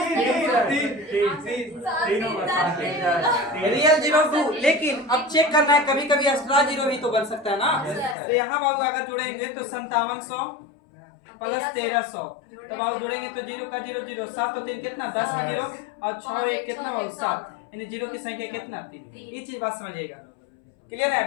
रियल जीरो 2, लेकिन अब चेक करना है कभी कभी एक्स्ट्रा जीरो भी तो बन सकता है ना। तो यहाँ बाबू अगर जोड़ेंगे तो 5700 प्लस 1300, तब बाबू जोड़ेंगे तो जीरो का जीरो जीरो, 7 और 3 कितना, 10 का जीरो, और 6 1 कितना बाबू 7, यानी जीरो की संख्या कितना, 3। ये चीज बात समझिएगा, क्लियर है।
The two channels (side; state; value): right; drops out; at 8.2 s